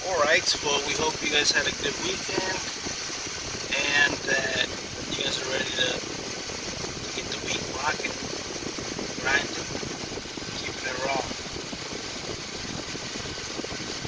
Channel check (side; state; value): both; identical; correlation 1.00